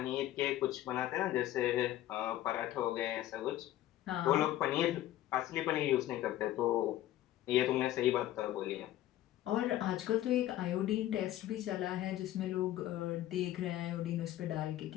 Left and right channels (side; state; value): right; quieter; 13.8 dB